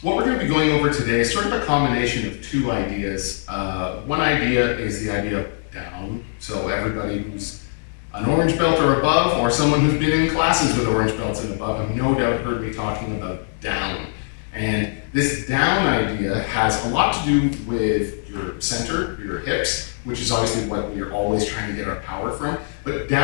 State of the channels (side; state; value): right; silent; digital silence